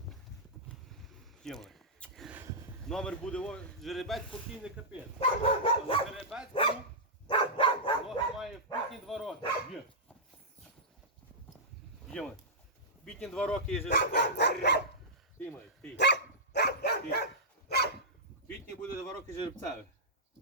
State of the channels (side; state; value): both; normal; correlation -0.13